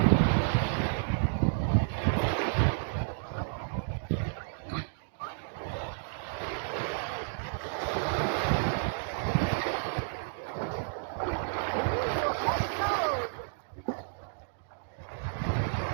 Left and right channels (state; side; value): silent; left; digital silence